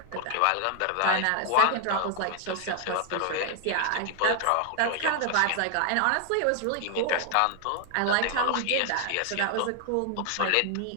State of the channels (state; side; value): different; both; correlation 0.00